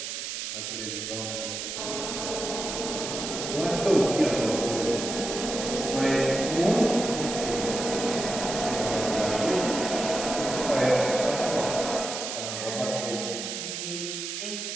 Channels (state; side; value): noise; right; hiss, 5 dB below the sound